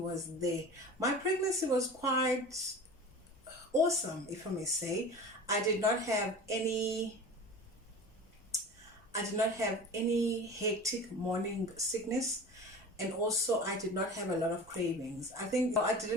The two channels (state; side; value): normal; both; correlation 0.36